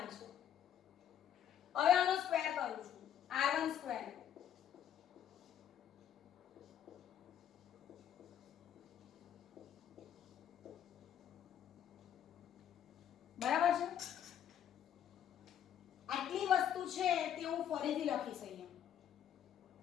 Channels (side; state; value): right; quieter; 9.8 dB